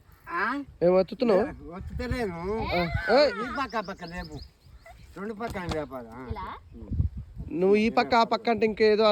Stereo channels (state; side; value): identical; both; correlation 1.00